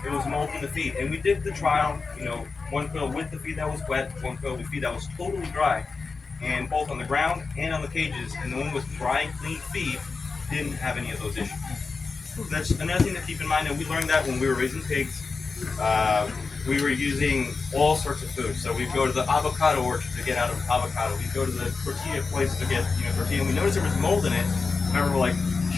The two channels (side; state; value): right; quieter; 4.5 dB